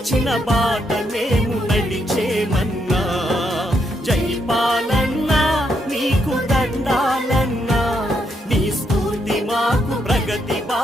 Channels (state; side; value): normal; both; correlation 0.78